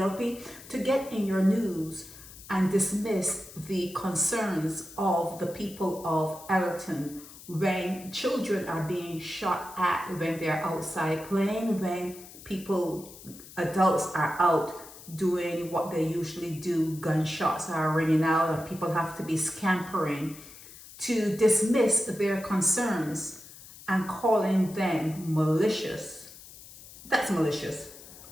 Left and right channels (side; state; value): left; noise; hiss, 18 dB below the sound